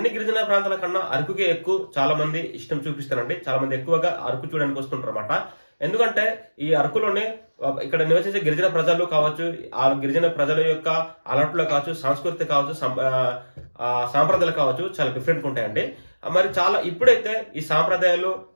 గిరిజన ప్రాంతాల కన్నా అరకుకే ఎక్కువ చాలా మంది ఇష్టం చూపిస్తారండి. చాలా మంది ఎక్కువగా అరకు చూడడానికి వస్తుంటారు అన్నమాట. ఎందుకంటే ఈ అరకులోనే ఇక్కడ నివసించే గిరిజన ప్రజలు కావచ్చు, ఆ గిరిజన ప్రజల యొక్క అలవాట్లు కావచ్చు, సంస్కృతి కావచ్చు, సాంప్రదాయాలు కావచ్చు, చాలా డిఫరెంట్ ఉంటాయండి. మరి చాలా ఇప్పుడైతే ఈ సాంప్రదాయాలు,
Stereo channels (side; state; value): both; inverted; correlation -1.00